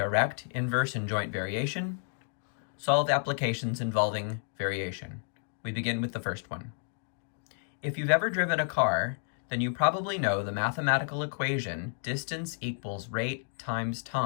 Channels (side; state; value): right; silent; digital silence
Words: inverse, and joint variation. Solve applications involving variation. We begin with the first one. If you've ever driven a car, then you probably know the mathematical equation distance equals rate times